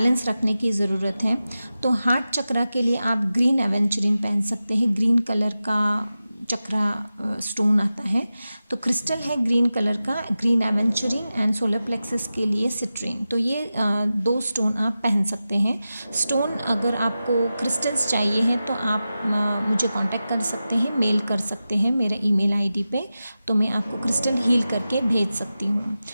रखने की ज़रूरत है। तो हार्ट चक्रा के लिए आप ग्रीन एवेंचरिन पहन सकते हैं। ग्रीन कलर का चक्रा स्टोन आता है, तो क्रिस्टल है ग्रीन कलर का, ग्रीन एवेंचरिन एंड सोलर प्लेक्सस के लिए सिट्रीन। तो ये 2 स्टोन आप पहन सकते हैं। स्टोन अगर आपको क्रिस्टल्स चाहिए हैं तो आप मुझे कांटेक्ट कर सकते हैं, मेल कर सकते हैं मेरे ईमेल आईडी पे, तो मैं आपको क्रिस्टल हील करके भेज सकती हूँ।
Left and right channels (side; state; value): both; inverted; correlation -0.93